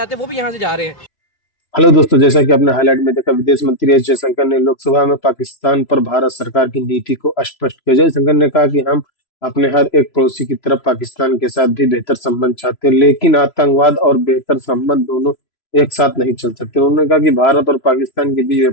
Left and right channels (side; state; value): right; late; 3.0 ms